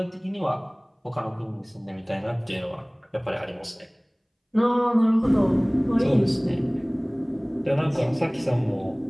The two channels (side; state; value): both; identical; correlation 1.00